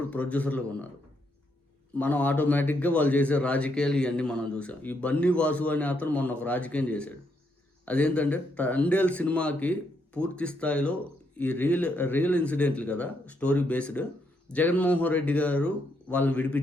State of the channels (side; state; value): both; normal; correlation 0.77